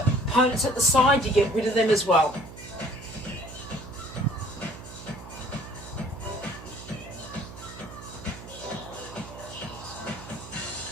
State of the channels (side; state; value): right; noise; hum, 14 dB below the sound